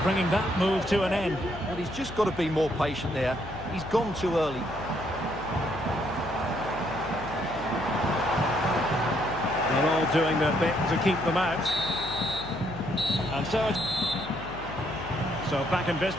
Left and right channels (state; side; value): noise; left; hum, 13 dB below the sound